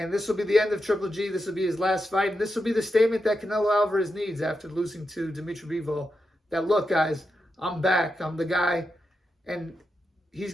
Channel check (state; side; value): normal; both; correlation 0.87